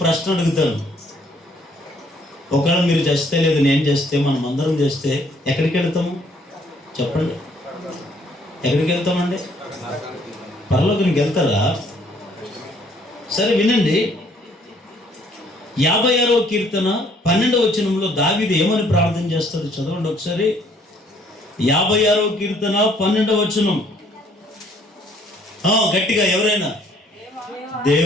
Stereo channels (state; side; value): normal; both; correlation 0.63